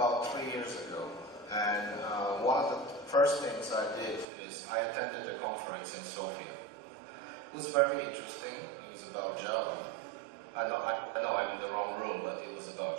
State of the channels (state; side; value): drops out; left; at 4.2 s